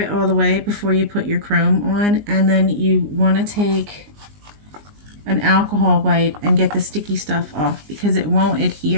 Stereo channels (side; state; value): left; late; 19 ms